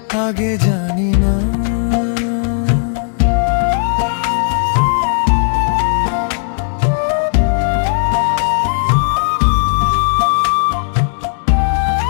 আগে জানি না।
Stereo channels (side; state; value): right; silent; 64 dB below the other